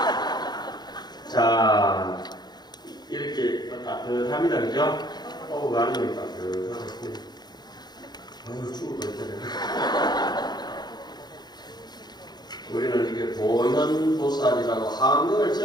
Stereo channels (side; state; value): right; late; 0.20 ms